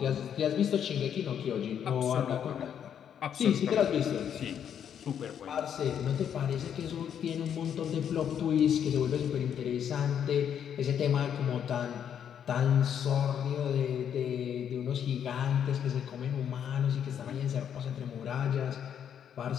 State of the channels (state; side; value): quieter; right; 8.8 dB